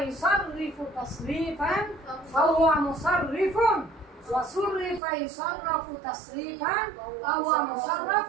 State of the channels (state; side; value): drops out; left; at 5.0 s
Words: ইসাররিফু তাসরিফান ফাহুয়া মুসাররিফুন, ওয়া সুররিফা ইসাররাফু তাসরিফান ফাহুয়া